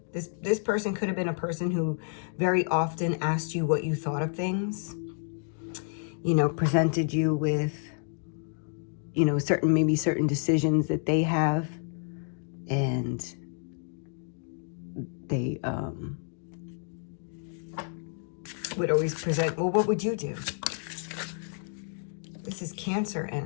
this person could have been a person who very often asked you what you thought of things, you know, presented you with, you know, certain decisions that they have, and they would always present, well, what would you do? This is Cancer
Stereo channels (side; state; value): right; silent; digital silence